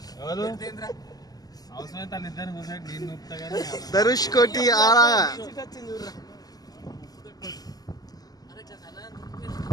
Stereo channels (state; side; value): late; right; 0.18 ms